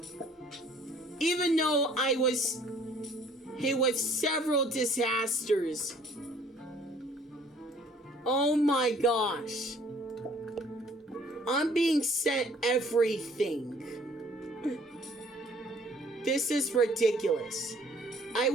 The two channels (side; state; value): both; normal; correlation 0.57